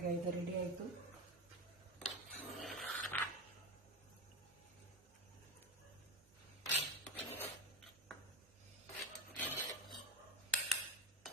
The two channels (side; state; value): both; normal; correlation 0.14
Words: ಇದು ರೆಡಿ ಆಯಿತು.